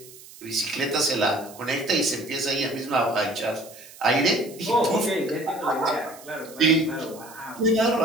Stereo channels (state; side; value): noise; right; hiss, 19 dB below the sound